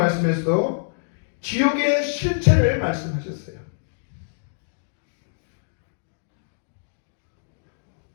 지옥의 실체를 말씀하셨어요.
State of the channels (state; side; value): silent; right; digital silence